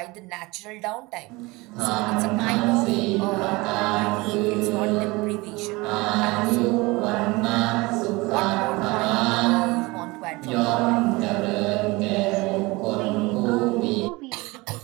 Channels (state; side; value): quieter; left; 23.2 dB